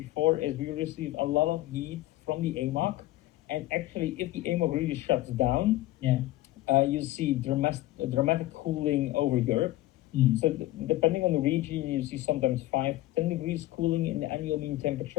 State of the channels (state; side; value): quieter; right; 16.5 dB